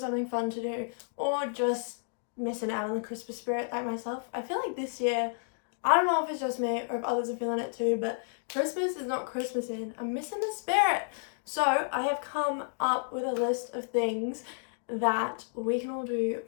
fun to do, or just missing out on the Christmas spirit like myself? I feel like this year, I don't know if it's just me or if others are feeling it too, but Christmas is not Christmasing. I'm missing the spirit. So I have come up with a list of things that we can all do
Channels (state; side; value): silent; right; digital silence